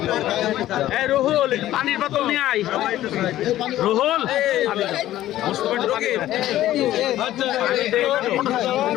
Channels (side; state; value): right; quieter; 13.9 dB